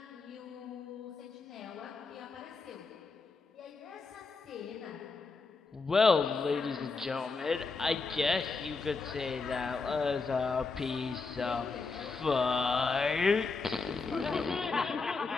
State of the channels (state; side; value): quieter; right; 4.3 dB